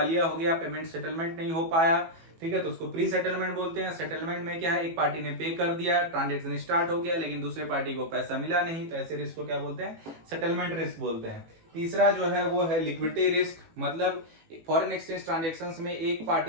हो गया, पेमेंट सेटलमेंट नहीं हो पाया। ठीक है, तो उसको प्री सेटलमेंट बोलते हैं। सेटलमेंट में क्या है, एक पार्टी ने पे कर दिया, ट्रांजेक्शन स्टार्ट हो गया, लेकिन दूसरे पार्टी को पैसा मिला नहीं, तो ऐसे रिस्क को क्या बोलते हैं, सेटलमेंट रिस्क बोलते हैं। तीसरा जो है वो है लिक्विडिटी रिस्क, मतलब फॉरेन एक्सचेंज ट्रांजेक्शंस में एक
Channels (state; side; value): late; left; 18 ms